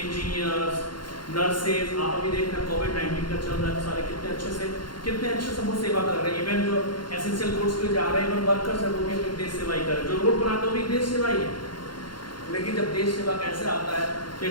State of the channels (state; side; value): late; right; 0.72 ms